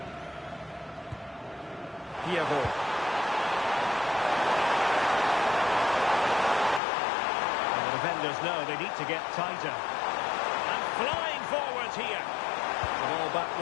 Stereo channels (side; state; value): right; drops out; at 6.8 s